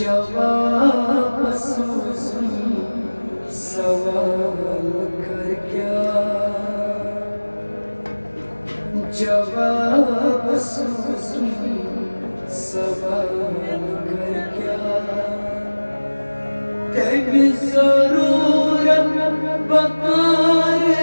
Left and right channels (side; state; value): both; inverted; correlation -1.00